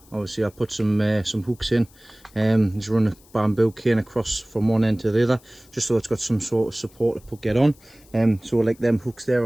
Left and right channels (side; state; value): left; noise; hiss, 28 dB below the sound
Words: Obviously I put some hooks in, just run a bamboo cane across from one end to the other, just so it's got some sort of support to get on. So like them hooks there